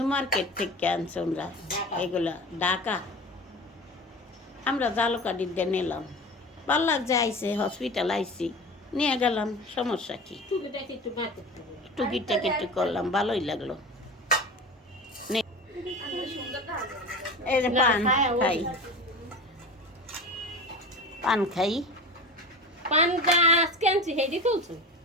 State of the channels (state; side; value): normal; both; correlation 0.33